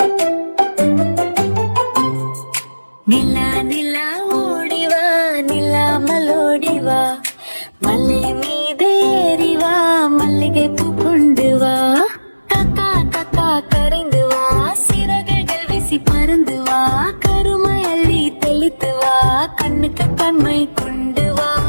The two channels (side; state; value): both; inverted; correlation -1.00